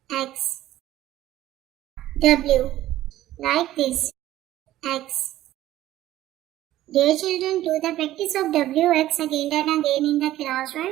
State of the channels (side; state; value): left; quieter; 14.3 dB